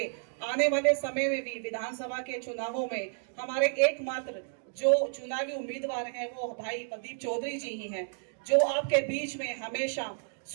आने वाले समय में भी विधानसभा के चुनावों में हमारे एकमात्र जो चुनावी उम्मीदवार हैं वो भाई प्रदीप चौधरी जी ही हैं, जो आपके बीच में हमेशा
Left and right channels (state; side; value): silent; left; digital silence